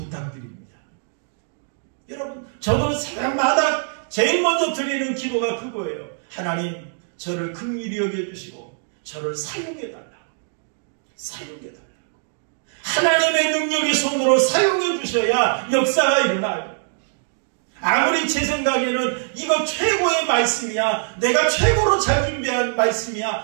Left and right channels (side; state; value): left; silent; digital silence